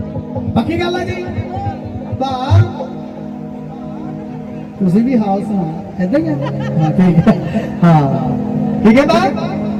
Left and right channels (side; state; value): both; identical; correlation 1.00